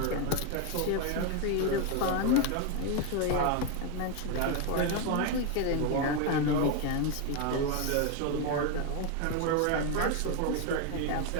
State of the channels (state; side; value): different; both; correlation 0.02